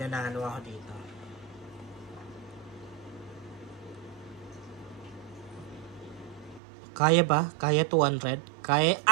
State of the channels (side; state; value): left; drops out; at 6.6 s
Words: ako dito. Kaya ba? Kaya 200? Kaya,